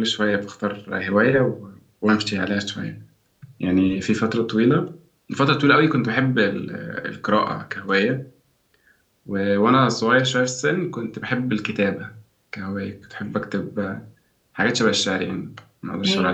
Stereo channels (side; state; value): both; identical; correlation 1.00